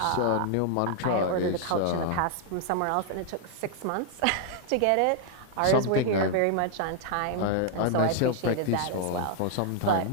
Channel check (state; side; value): different; both; correlation 0.00